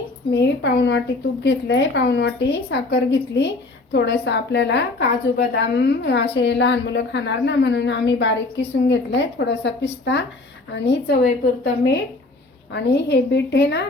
मी पाऊण वाटी तूप घेतले, पाऊण वाटी साखर घेतली, थोडंसं आपल्याला काजू बदाम असे लहान मुलं खाणार ना म्हणून आम्ही बारीक किसून घेतले, थोडासा पिस्ता आणि चवीपुरतं मीठ। आणि हे बीट आहे ना,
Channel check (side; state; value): right; quieter; 3.2 dB